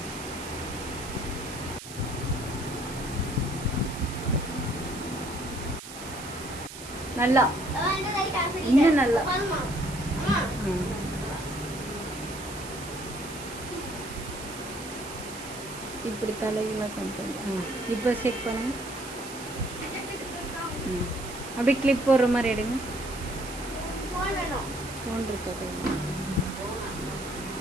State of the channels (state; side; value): noise; right; hiss, 12 dB below the sound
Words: நல்லா இன்னும் நல்லா. இப்படி தலையெல்லாம் கொண்டு இப்போ செக் பண்ணுங்க. அப்படியே கிளிப் போடுற மாதிரி எடுங்க. ஃபோன் இருக்கா கையில்?